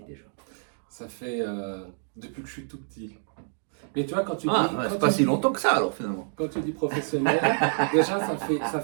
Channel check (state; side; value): silent; left; digital silence